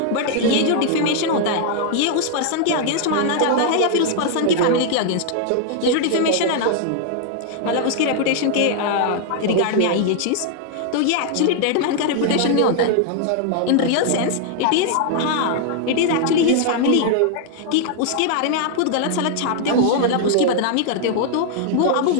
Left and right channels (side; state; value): both; different; correlation 0.00